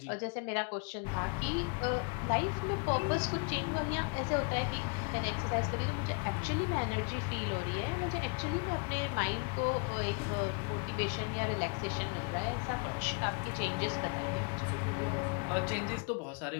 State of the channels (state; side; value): quieter; right; 34.9 dB